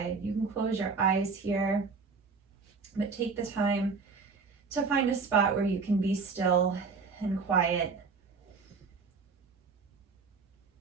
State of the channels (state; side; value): quieter; left; 4.8 dB